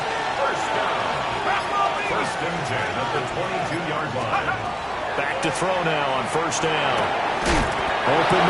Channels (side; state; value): both; identical; correlation 1.00